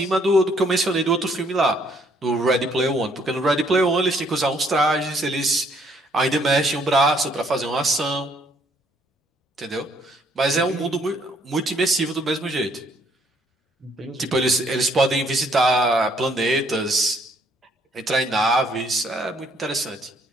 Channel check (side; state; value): both; normal; correlation 0.66